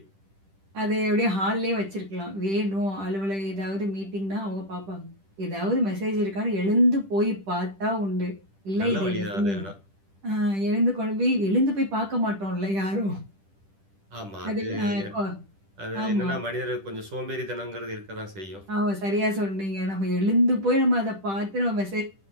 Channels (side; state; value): left; late; 10 ms